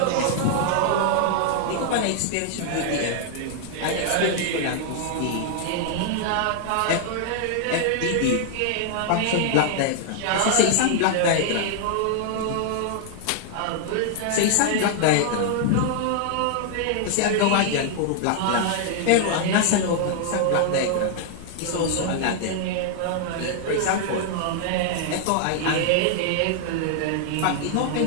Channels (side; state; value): both; different; correlation 0.00